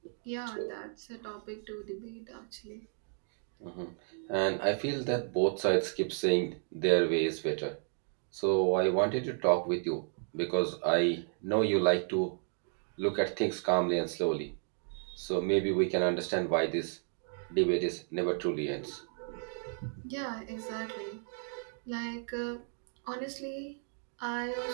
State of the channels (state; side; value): silent; left; 56 dB below the other